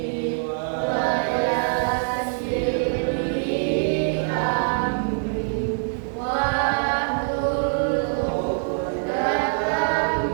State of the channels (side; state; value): left; silent; digital silence